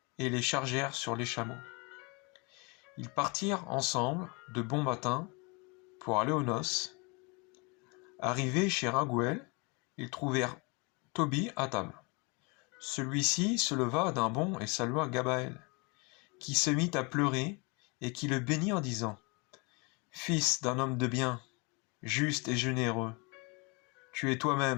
et les chargèrent sur les chameaux. Ils partirent ensemble de bon matin pour aller aux noces. Arrivés chez Raguel, ils trouvèrent Tobie à table. Celui-ci se leva d'un bond et salua Gabaël, qui se mit à pleurer et qui le bénit en disant : « Fils d'un homme de bien, juste et généreux, tu es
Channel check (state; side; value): quieter; right; 30.0 dB